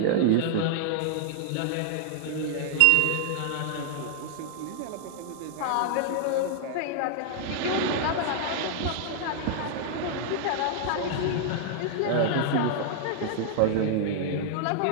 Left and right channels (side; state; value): both; different; correlation 0.00